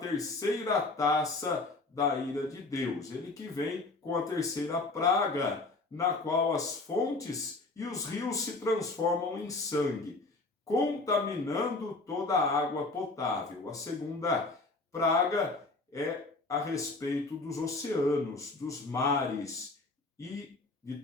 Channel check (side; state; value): right; quieter; 3.4 dB